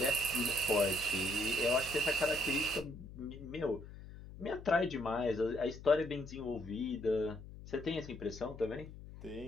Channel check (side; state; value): left; noise; hum, 14 dB below the sound